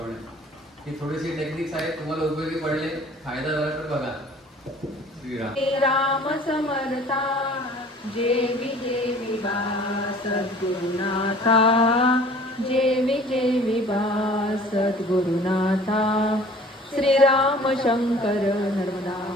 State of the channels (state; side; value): normal; both; correlation 0.50